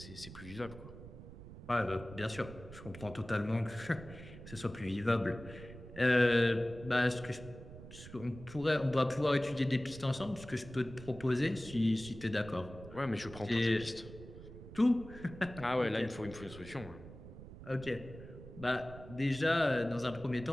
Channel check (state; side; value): noise; right; rumble, 15 dB below the sound